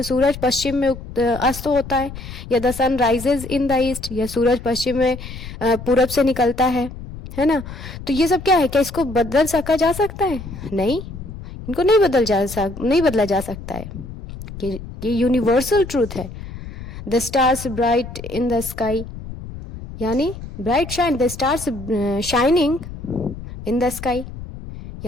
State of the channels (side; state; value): left; noise; rumble, 12 dB below the sound